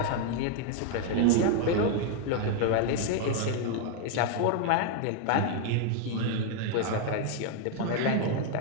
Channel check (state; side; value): different; both; correlation 0.01